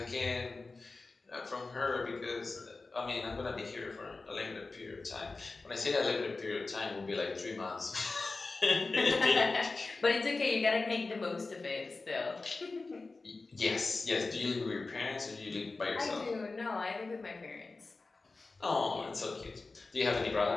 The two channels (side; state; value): right; quieter; 3.7 dB